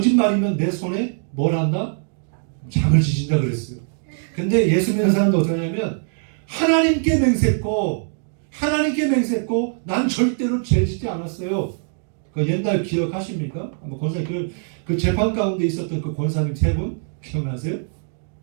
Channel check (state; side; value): silent; left; 64 dB below the other